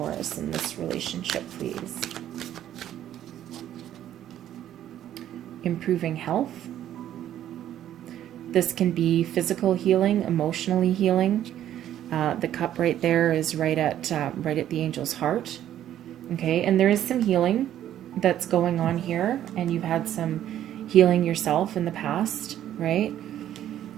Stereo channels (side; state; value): left; quieter; 11.5 dB